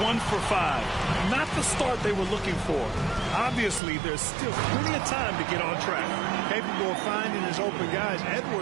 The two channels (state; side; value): drops out; left; at 3.8 s